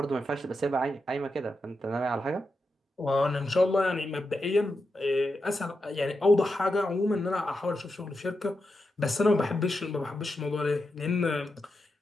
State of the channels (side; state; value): both; normal; correlation 0.87